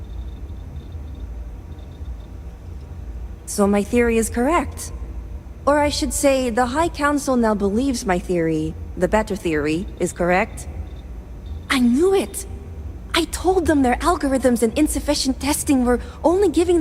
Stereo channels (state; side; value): identical; both; correlation 1.00